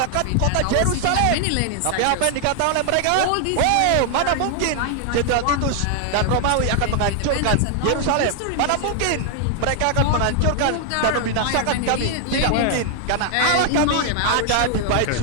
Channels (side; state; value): both; different; correlation 0.00